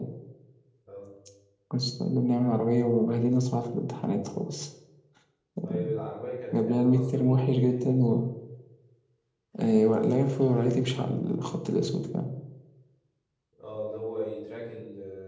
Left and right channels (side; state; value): both; identical; correlation 1.00